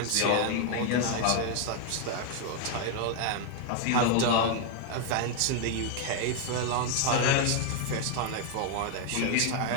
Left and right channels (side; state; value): both; different; correlation 0.00